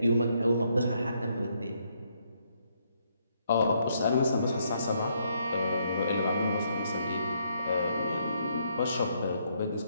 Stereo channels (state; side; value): inverted; both; correlation -0.73